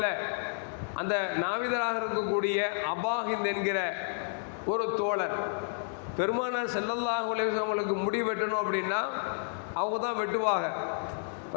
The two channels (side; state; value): right; silent; digital silence